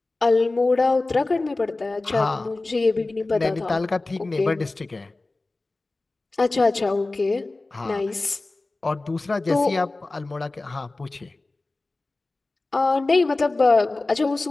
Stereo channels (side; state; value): right; quieter; 3.2 dB